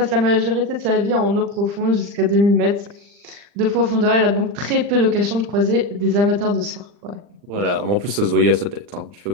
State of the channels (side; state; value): left; late; 40 ms